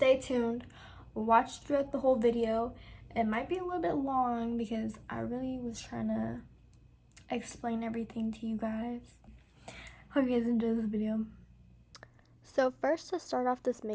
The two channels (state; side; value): identical; both; correlation 1.00